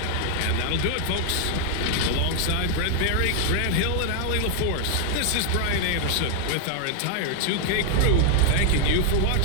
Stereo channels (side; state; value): both; different; correlation 0.00